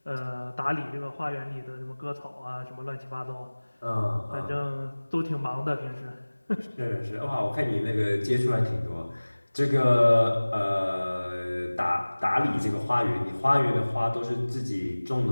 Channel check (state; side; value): inverted; both; correlation -1.00